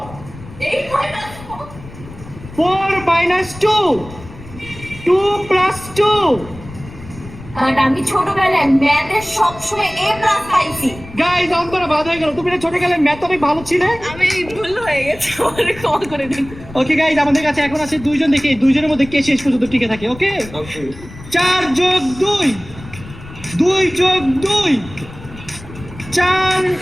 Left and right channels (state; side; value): noise; left; rumble, 16 dB below the sound